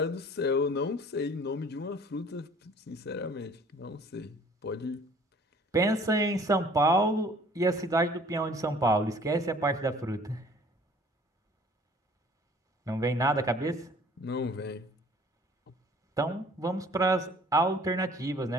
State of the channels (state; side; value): normal; both; correlation 0.54